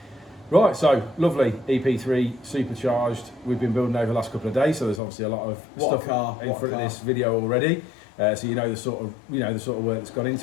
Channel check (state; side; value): drops out; right; at 5.0 s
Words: Right, so lovely EP3 Supercharged. We've been building over the last couple of days, so there's obviously a lot of stuff in front of this video already. So you know the sort of work that's gone